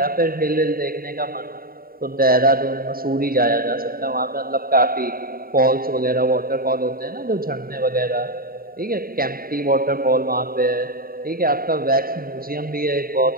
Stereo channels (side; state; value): left; late; 0.43 ms